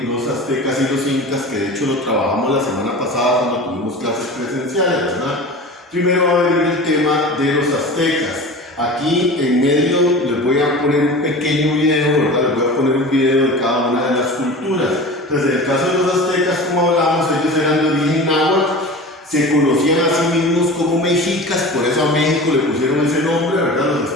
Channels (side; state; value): both; normal; correlation 0.35